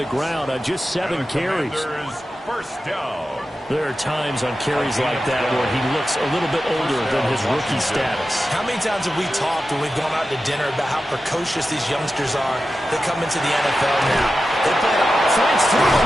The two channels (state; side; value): normal; both; correlation 0.92